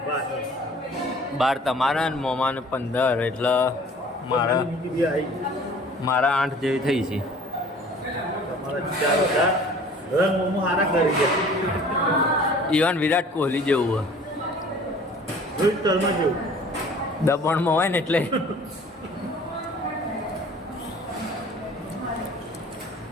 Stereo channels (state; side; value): normal; both; correlation 0.49